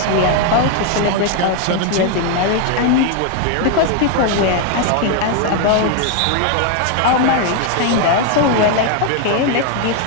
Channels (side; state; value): both; different; correlation 0.00